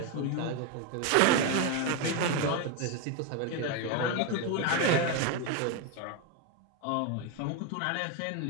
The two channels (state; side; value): different; both; correlation 0.02